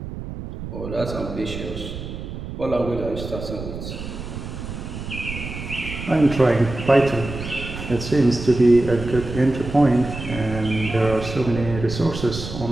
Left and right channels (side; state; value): right; noise; rumble, 8 dB below the sound